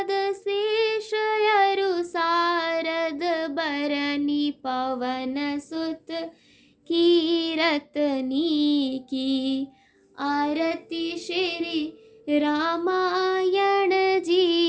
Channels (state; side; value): identical; both; correlation 1.00